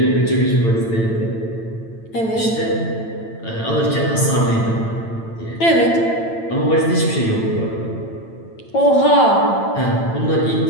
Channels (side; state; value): right; late; 8.9 ms